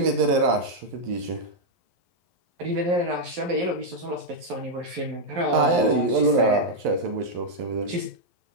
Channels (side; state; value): left; late; 11 ms